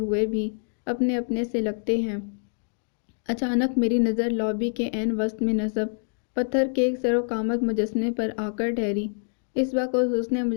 بھی اپنے اپنے سے لگتے ہیں۔ اچانک میری نظر لابی کے عین وسط میں نصب پتھر کے ایک سر و قامت مجسمے پر آ کر ٹھہری۔ اس وقت اس حسن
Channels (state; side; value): silent; right; 61 dB below the other